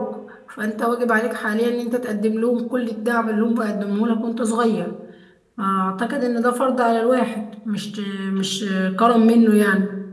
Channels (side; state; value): both; identical; correlation 1.00